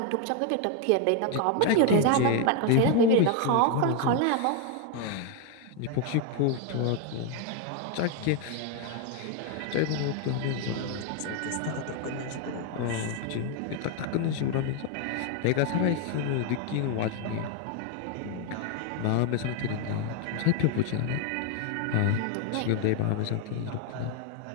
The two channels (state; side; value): different; both; correlation 0.01